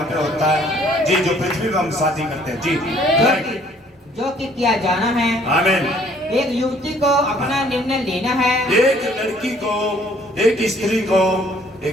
पे होता है, जी, जो पृथ्वी पे हम शादी करते हैं। जी, जो कि किया जाना है। आमीन। एक युवती को अपना निर्णय लेना है। एक लड़की को, एक स्त्री को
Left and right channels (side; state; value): both; normal; correlation 0.60